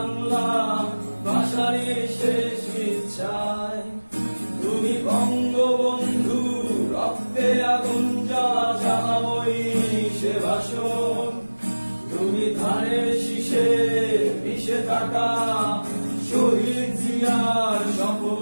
ভাষারই শেষ ইচ্ছায়। তুমি বঙ্গবন্ধু রক্তে আগুন জ্বালা জ্বালাময়ী সে ভাষণ। তুমি ধানের শীষে মিশে থাকা শহীদ জিয়ার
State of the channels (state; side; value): inverted; both; correlation -1.00